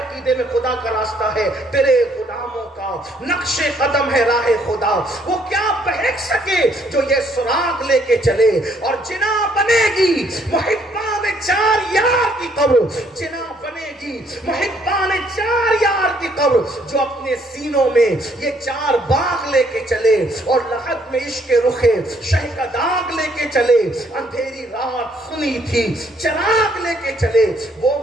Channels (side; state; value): both; normal; correlation 0.67